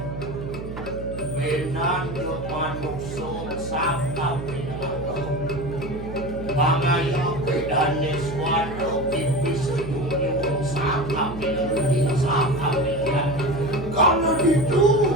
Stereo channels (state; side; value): noise; right; hum, 9 dB below the sound